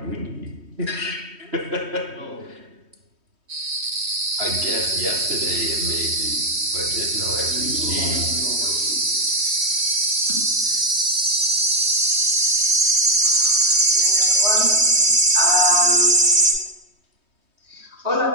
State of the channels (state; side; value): late; left; 3.1 ms